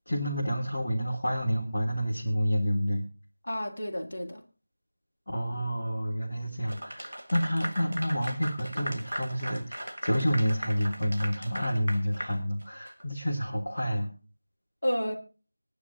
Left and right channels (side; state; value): both; inverted; correlation -0.96